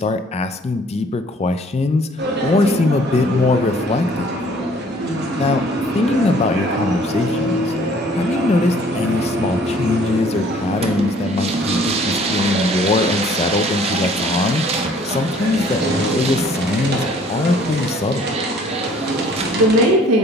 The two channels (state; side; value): normal; both; correlation 0.56